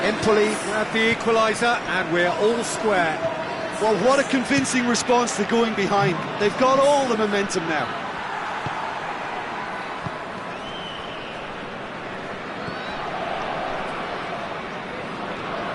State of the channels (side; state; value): both; identical; correlation 1.00